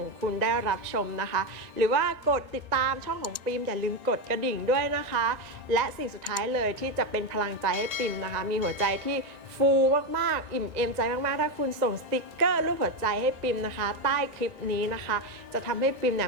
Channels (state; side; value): late; left; 1.8 ms